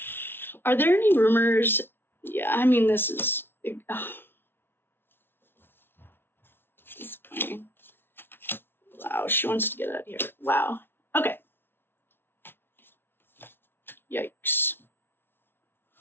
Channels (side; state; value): right; late; 0.11 ms